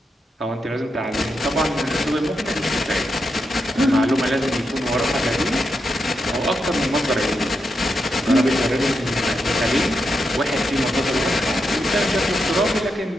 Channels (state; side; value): normal; both; correlation 0.85